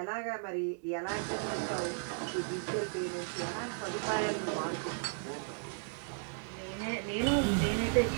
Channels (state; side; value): silent; left; 54 dB below the other